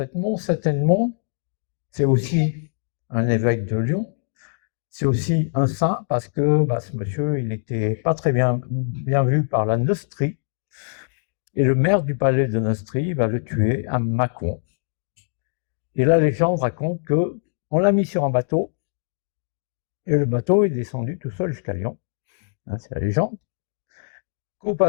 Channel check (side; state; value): right; silent; digital silence